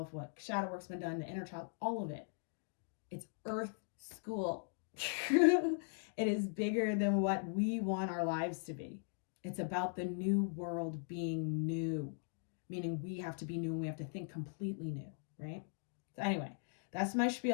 what shadow work's been done, the inner child, all of it. It's earth school. It is bigger than what we want our lives to be. It's about the new world being new. Meaning we have to be new and we have to think completely new, right? So anyway, that's my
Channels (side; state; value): right; silent; digital silence